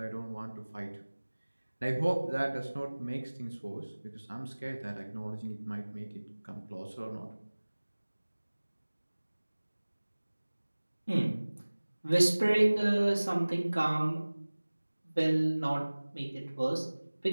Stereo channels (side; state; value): both; inverted; correlation -1.00